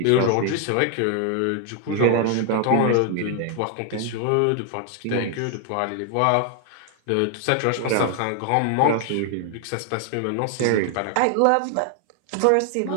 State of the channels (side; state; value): both; different; correlation 0.00